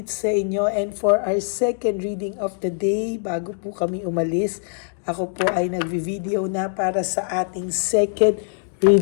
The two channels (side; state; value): right; silent; digital silence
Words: sa inyo, and for our second reading of the day, bago po kami umalis, ako po ay nagvi-video na para sa ating second